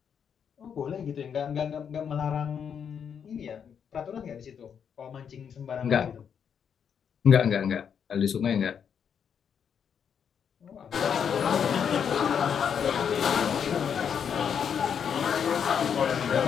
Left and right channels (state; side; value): quieter; right; 7.6 dB